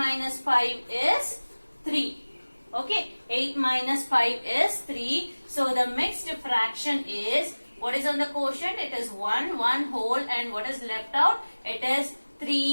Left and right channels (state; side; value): inverted; both; correlation -1.00